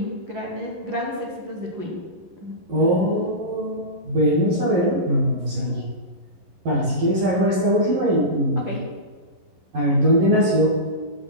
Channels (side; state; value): left; late; 11 ms